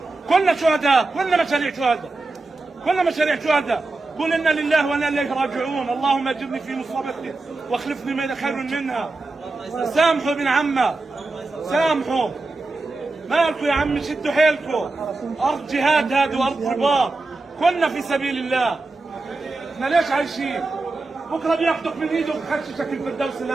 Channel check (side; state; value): left; quieter; 3.3 dB